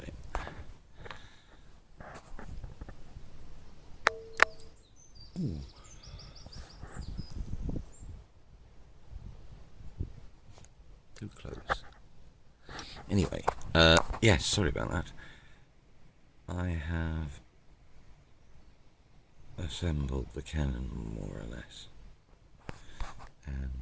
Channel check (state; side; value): identical; both; correlation 1.00